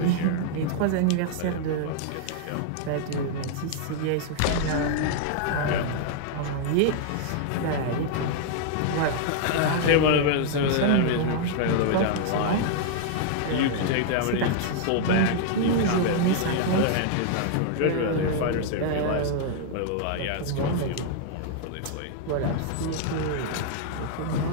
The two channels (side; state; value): both; different; correlation 0.00